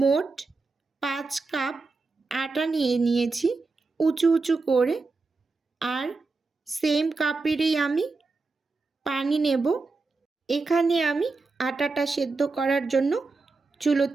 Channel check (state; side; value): quieter; left; 3.9 dB